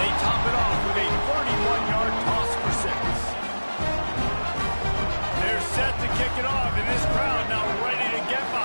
top it off with a 31-yard toss for 6. They're set to kick it off, and this crowd now ready to get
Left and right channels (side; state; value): both; inverted; correlation -1.00